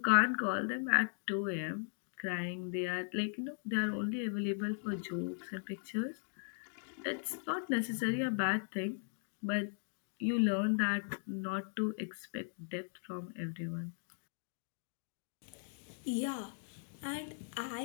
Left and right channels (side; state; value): right; silent; digital silence